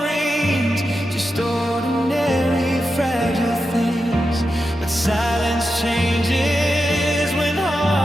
rings, just ordinary fragile things. But silence changes when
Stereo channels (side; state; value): both; normal; correlation 0.89